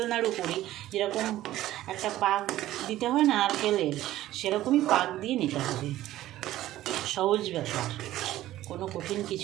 নাড়ু করি, যেরকম একটা পাক দিতে হয় না নারকেলের, সেরকমই পাক দিয়ে নিতে হবে। সহজ ব্যাপার, কোনো কঠিন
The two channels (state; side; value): quieter; left; 14.6 dB